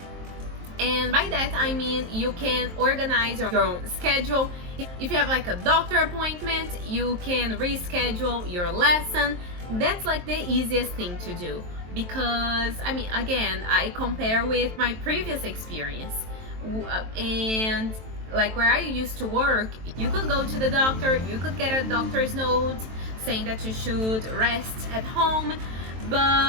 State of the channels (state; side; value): late; left; 23 ms